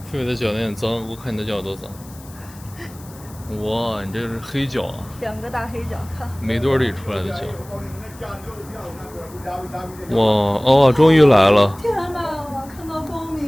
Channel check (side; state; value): left; noise; hiss, 22 dB below the sound